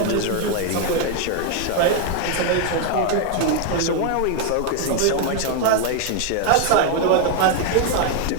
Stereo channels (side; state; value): both; different; correlation 0.00